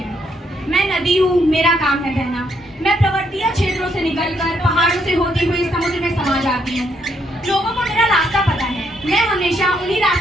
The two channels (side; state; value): both; normal; correlation 0.74